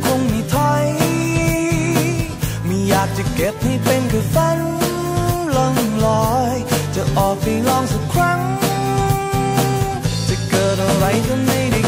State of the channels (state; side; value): identical; both; correlation 1.00